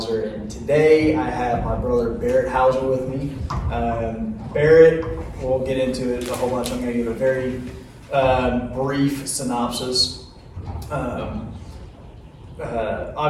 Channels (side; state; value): both; identical; correlation 1.00